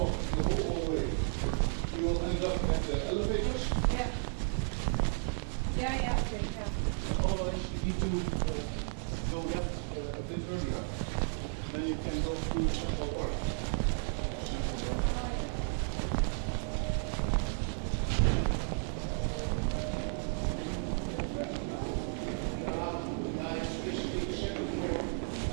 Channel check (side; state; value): left; silent; 55 dB below the other